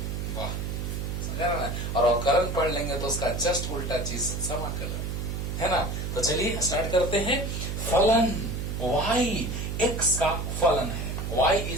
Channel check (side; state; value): right; noise; hum, 3 dB below the sound